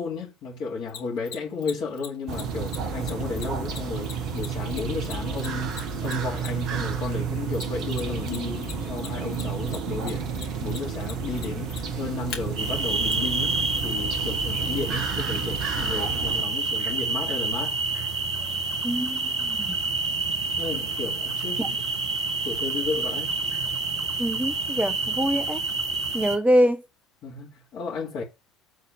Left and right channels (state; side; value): normal; both; correlation 0.49